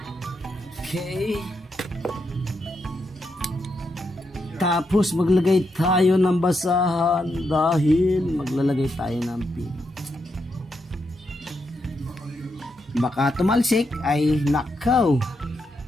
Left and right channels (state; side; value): normal; both; correlation 0.82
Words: Okay, tapos maglagay tayo ng basahan dahil maglalagay tayo ng pin. Baka tumalsik ay nakaw.